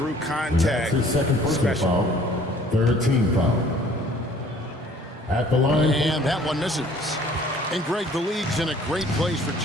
contact. That's his second personal foul. Third team foul. At the line. And that one misses. And Greg, the league's in a great place for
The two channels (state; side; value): normal; both; correlation 0.54